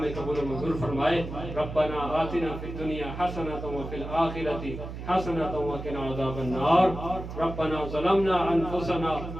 قبول و منظور فرمائے. ربنا آتنا فی الدنیا حسنۃ وفی الآخرۃ حسنۃ وقنا عذاب النار. ربنا ظلمنا انفسنا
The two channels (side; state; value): right; noise; hum, 9 dB below the sound